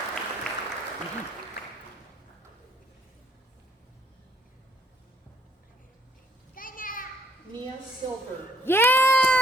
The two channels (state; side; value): normal; both; correlation 0.65